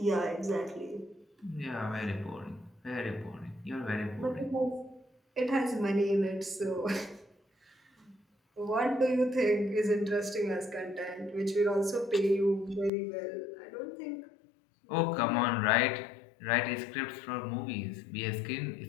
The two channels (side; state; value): right; drops out; at 12.9 s